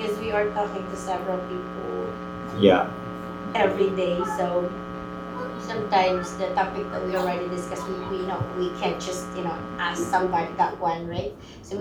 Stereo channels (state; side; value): identical; both; correlation 1.00